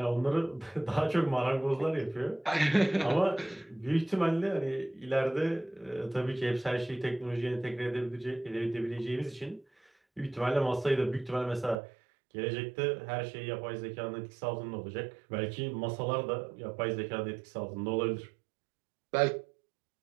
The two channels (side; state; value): left; drops out; at 11.8 s